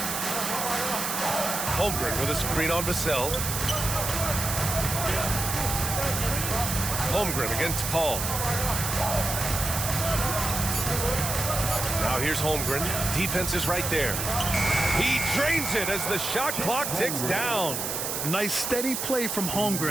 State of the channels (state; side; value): noise; right; hiss, 2 dB below the sound